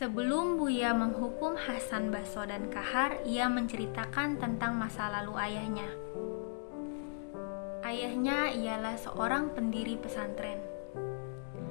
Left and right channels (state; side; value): silent; right; digital silence